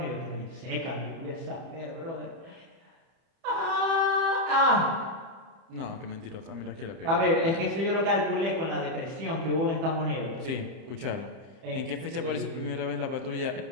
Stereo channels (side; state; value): left; late; 30 ms